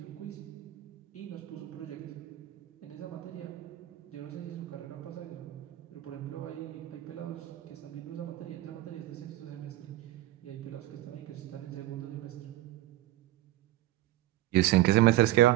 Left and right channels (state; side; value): quieter; left; 15.5 dB